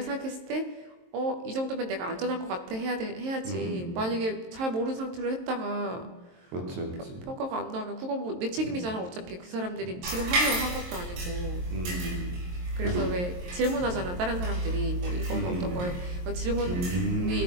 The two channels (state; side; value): late; left; 23 ms